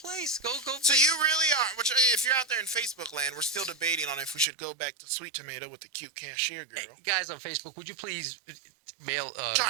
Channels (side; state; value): left; drops out; at 4.5 s